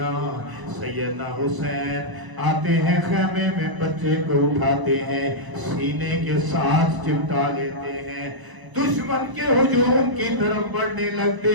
سیدنا حسین آتے ہیں خیمے میں، بچے کو اٹھاتے ہیں، سینے کے ساتھ چمٹا لیتے ہیں، دشمن کے ہجوم کی طرف بڑھنے لگتے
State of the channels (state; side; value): late; left; 1.0 ms